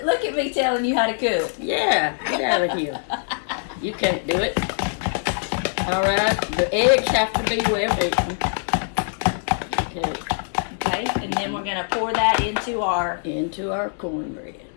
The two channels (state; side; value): silent; right; 63 dB below the other